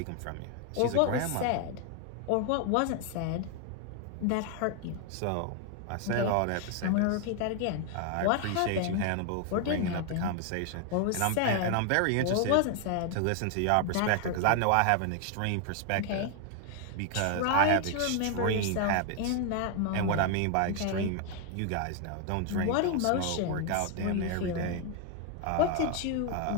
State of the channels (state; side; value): different; both; correlation 0.01